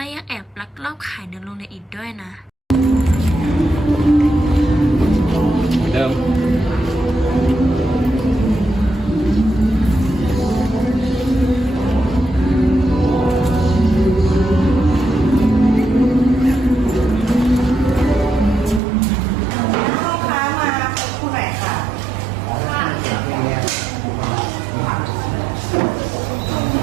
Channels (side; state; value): left; drops out; at 18.8 s